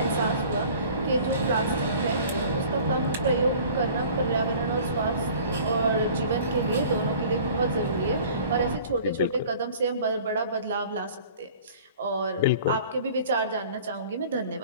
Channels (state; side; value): inverted; both; correlation -0.48